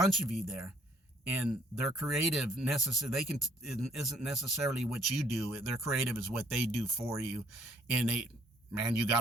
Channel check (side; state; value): both; normal; correlation 0.62